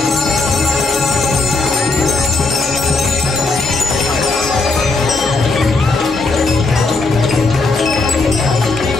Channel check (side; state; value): right; quieter; 3.5 dB